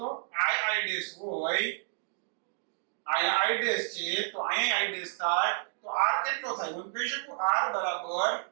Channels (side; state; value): left; silent; digital silence